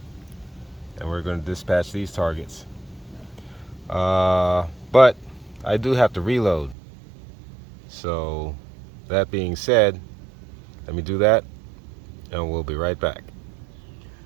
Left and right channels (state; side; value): drops out; left; at 6.8 s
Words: And we're going to dispatch these targets. But I do have to reload. So that being said, let me do that and we'll be right back.